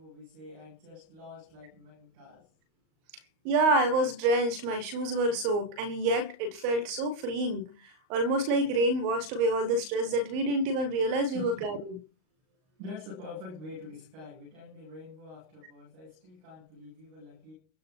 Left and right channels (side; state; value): left; late; 38 ms